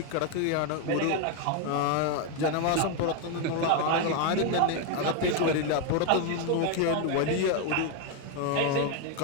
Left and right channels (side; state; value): both; different; correlation 0.01